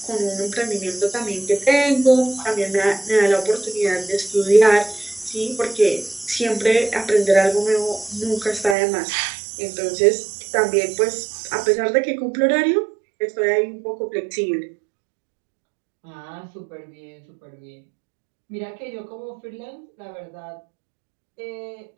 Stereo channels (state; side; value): drops out; left; at 8.8 s